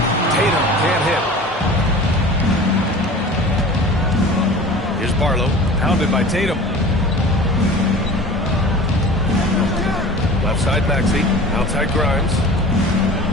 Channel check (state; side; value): normal; both; correlation 0.39